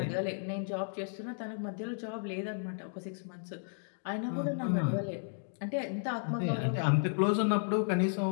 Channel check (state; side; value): silent; right; digital silence